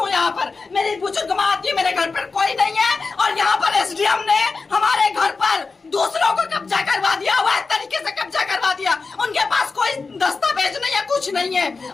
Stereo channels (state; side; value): quieter; right; 4.3 dB